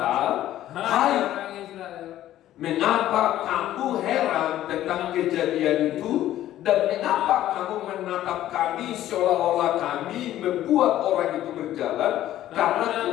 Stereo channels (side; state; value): right; quieter; 13.2 dB